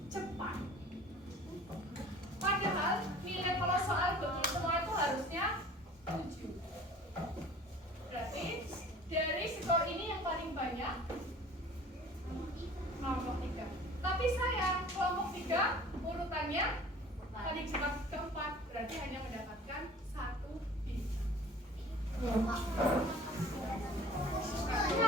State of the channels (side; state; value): both; normal; correlation 0.46